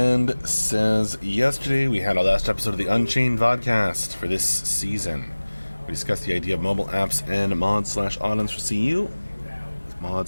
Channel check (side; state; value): both; inverted; correlation -1.00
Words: says, yesterday we had our last episode of the Unchained vodcast for this season. We discussed the idea of mobile apps and mods/add-ons for CU.